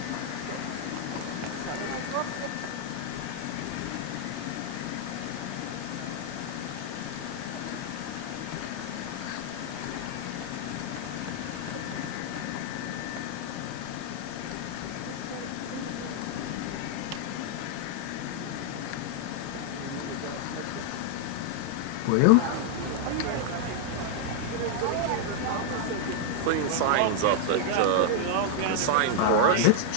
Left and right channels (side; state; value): both; different; correlation -0.01